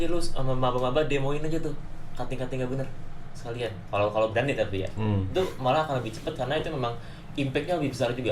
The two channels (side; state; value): both; identical; correlation 1.00